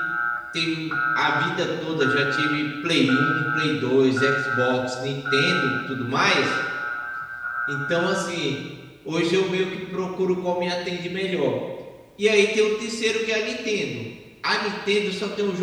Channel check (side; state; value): both; identical; correlation 1.00